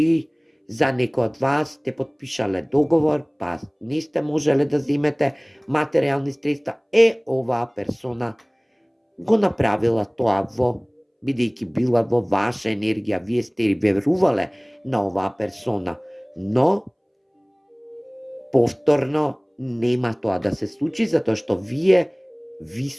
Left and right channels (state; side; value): identical; both; correlation 1.00